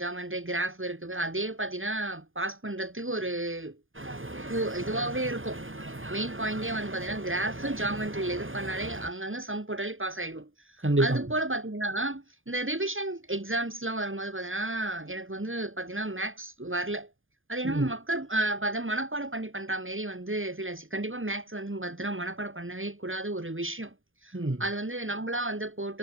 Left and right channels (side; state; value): left; late; 0.59 ms